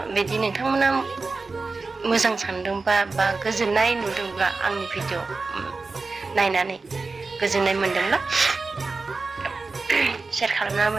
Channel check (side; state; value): left; quieter; 3.9 dB